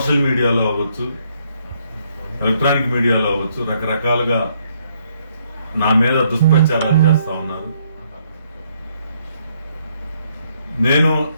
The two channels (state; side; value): inverted; both; correlation -0.71